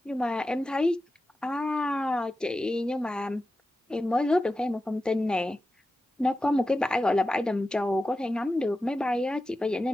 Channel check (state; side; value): normal; both; correlation 0.93